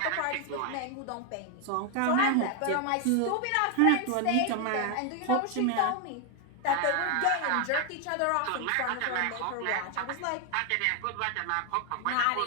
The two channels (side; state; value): both; different; correlation 0.01